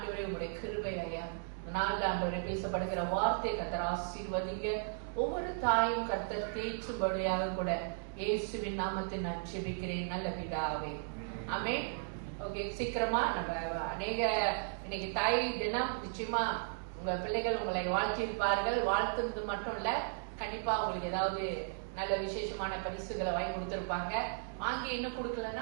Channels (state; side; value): silent; left; digital silence